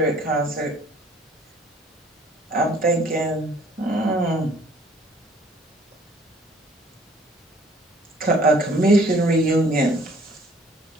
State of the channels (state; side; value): normal; both; correlation 0.57